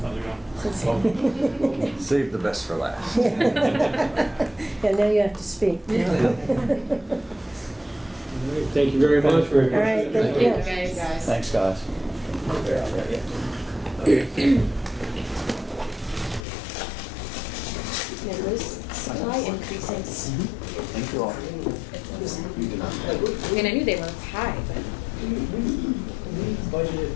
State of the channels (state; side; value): drops out; right; at 16.4 s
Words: Save the best for last. Yeah, now you have to speak. Thank you very much. All right, thank you. Thanks, guys. Thank you all. I mean, I knew they were high, but We budgeted